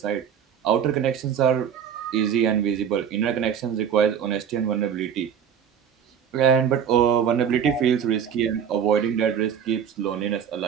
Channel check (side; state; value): left; quieter; 8.2 dB